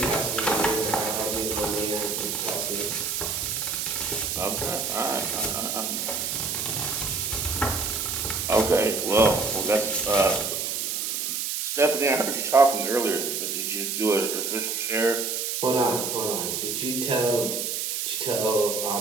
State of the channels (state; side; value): noise; right; hiss, 1 dB below the sound